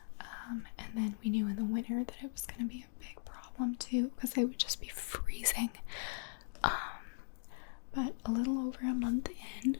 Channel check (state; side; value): silent; right; digital silence